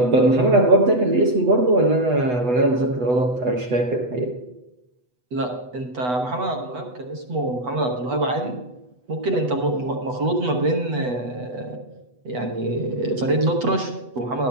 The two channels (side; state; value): left; late; 8.1 ms